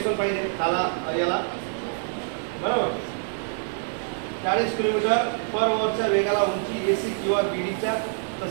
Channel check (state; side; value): silent; left; digital silence